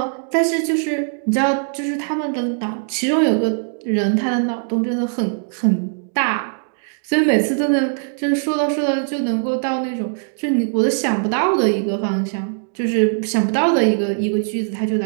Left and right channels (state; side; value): silent; left; digital silence